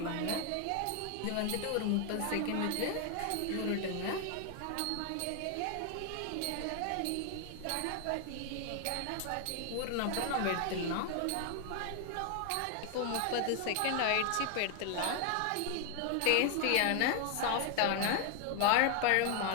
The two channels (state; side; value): different; both; correlation 0.00